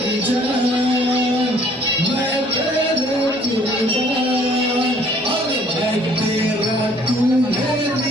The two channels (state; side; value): normal; both; correlation 0.58